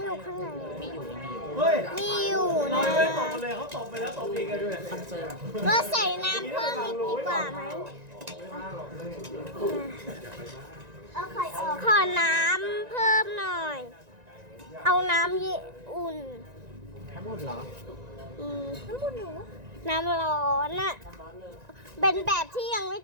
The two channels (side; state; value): left; late; 1.9 ms